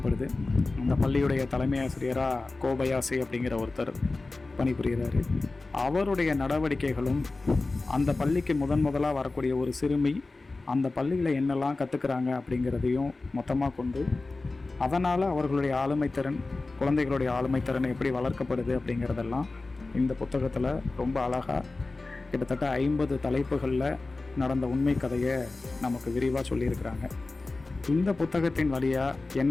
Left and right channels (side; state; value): right; quieter; 3.4 dB